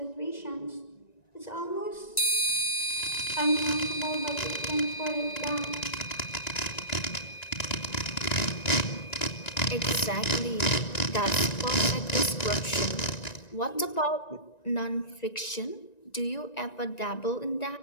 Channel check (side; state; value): right; late; 1.9 ms